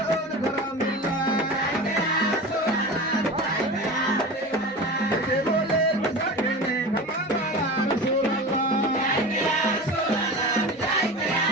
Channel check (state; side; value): normal; both; correlation 0.31